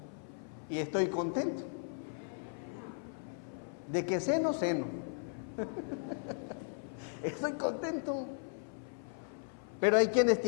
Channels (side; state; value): right; silent; 53 dB below the other